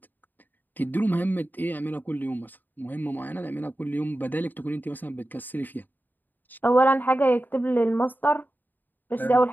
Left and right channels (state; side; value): late; right; 0.089 ms